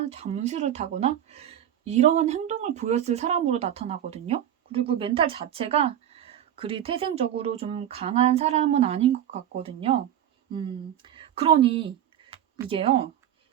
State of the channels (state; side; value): quieter; left; 10.7 dB